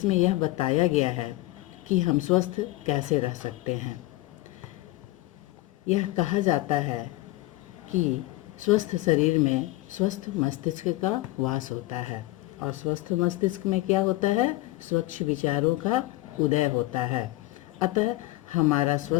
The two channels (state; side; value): quieter; right; 18.5 dB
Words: यह बताया गया है कि हम स्वस्थ कैसे रह सकते हैं। यह कहा जाता है कि स्वस्थ शरीर में स्वस्थ मस्तिष्क का वास होता है और स्वस्थ मस्तिष्क में क्या होता है? स्वच्छ विचारों का उदय होता है। अतः हमारा